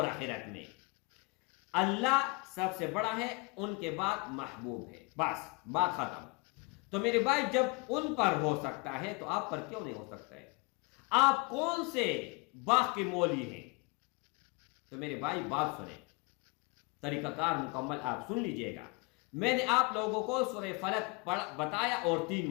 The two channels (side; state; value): right; quieter; 29.4 dB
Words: آخرت میں۔ اللہ سب سے بڑا ہے، ان کے بعد محبوب ہے، بس بات ختم۔ تو میرے بھائی جب ان پر ہو سکتا ہے تو آپ پر کیوں نہیں ہو سکتا ہے؟ آپ کون سے باغ کے مولی ہیں؟ تو میرے بھائی بات سنیں، طریقہ کار مکمل آپ سن لیجئے گا۔ میں نے آپ لوگوں کو سورہ فلق بتایا، اور 3